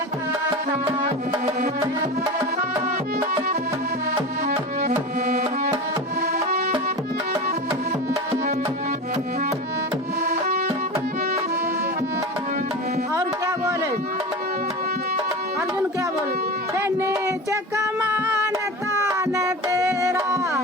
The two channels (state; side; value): normal; both; correlation 0.29